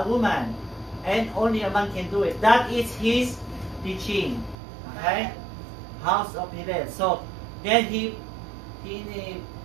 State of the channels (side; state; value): left; drops out; at 4.5 s